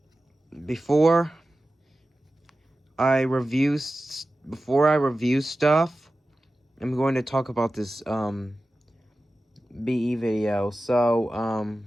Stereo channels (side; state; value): both; normal; correlation 0.95